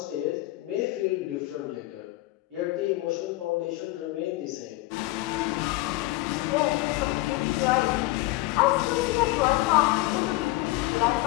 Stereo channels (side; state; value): right; quieter; 19.0 dB